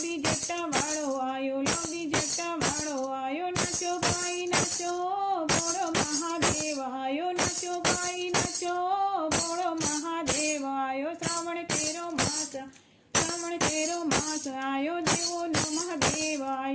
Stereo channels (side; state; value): both; identical; correlation 1.00